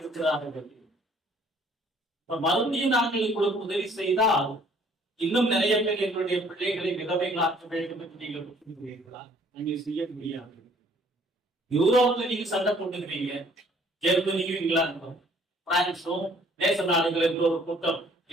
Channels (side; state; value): both; normal; correlation 0.59